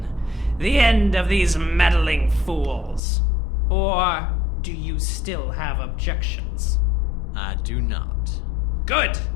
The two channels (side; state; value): right; drops out; at 3.0 s